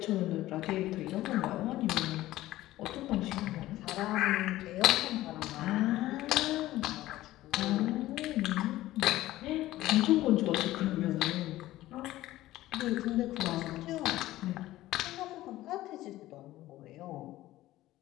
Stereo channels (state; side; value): quieter; right; 15.8 dB